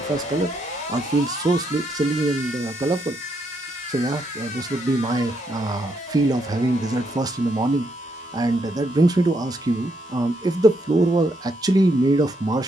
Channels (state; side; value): normal; both; correlation 0.76